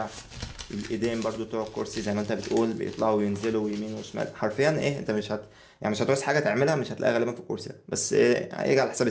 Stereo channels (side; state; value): both; identical; correlation 1.00